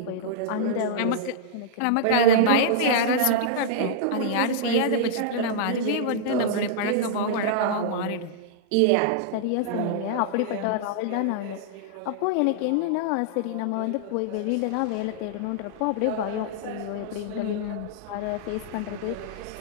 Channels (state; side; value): different; both; correlation -0.02